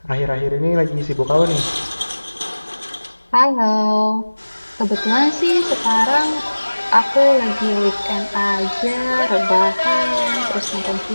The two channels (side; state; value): both; inverted; correlation -1.00